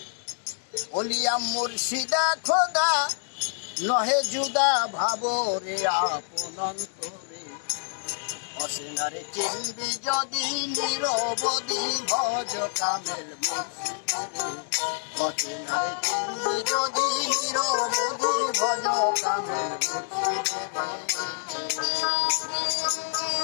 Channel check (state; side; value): silent; right; digital silence